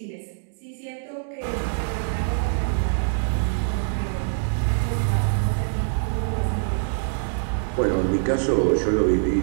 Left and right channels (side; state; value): left; silent; digital silence